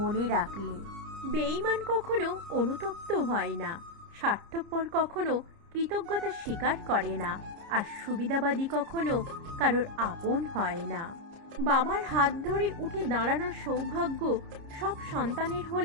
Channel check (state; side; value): late; left; 30 ms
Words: রাখলে। বেঈমান কখনো অনুতপ্ত হয় না, স্বার্থপর কখনো কৃতজ্ঞতা স্বীকার করে না, আর সুবিধাবাদী কখনো কারোর আপন হয় না। বাবার হাত ধরে উঠে দাঁড়ানোর সৌভাগ্য সব সন্তানের